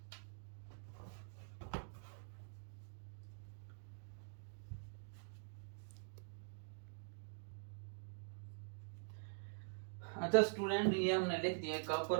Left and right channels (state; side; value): silent; left; digital silence